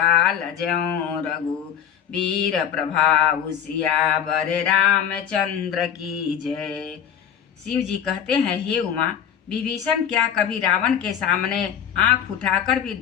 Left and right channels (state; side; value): quieter; right; 8.8 dB